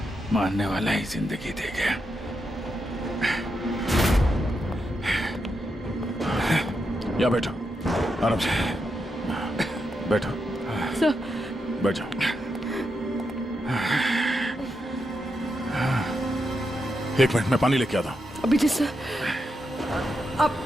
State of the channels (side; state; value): both; normal; correlation 0.84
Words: मारने वाला ही जिंदगी दे गया। या बैठो, आराम से बैठो। सर बैठो। एक मिनट, मैं पानी लेके आता हूं। अभिजीत सर,